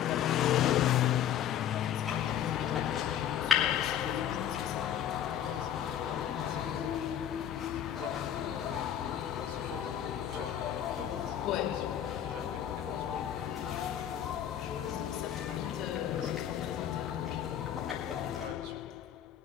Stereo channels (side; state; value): right; quieter; 10.0 dB